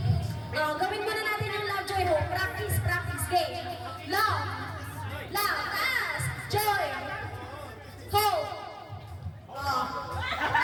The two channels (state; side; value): identical; both; correlation 1.00